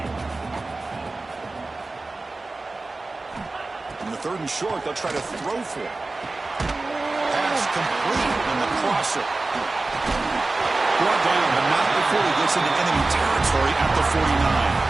In the third and short, they'll try to throw for it. Pass complete in the crosser. Brought down, but not before he gets into enemy territory at the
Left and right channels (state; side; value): quieter; left; 3.3 dB